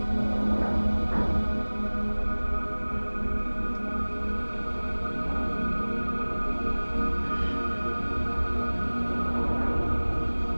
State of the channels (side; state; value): both; inverted; correlation -1.00